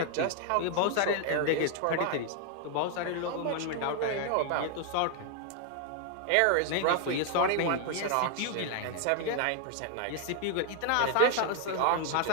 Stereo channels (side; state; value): both; different; correlation 0.00